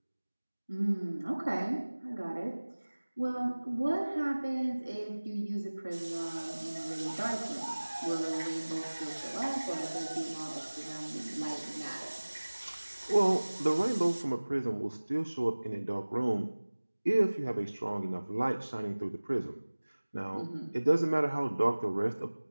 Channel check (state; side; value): inverted; both; correlation -1.00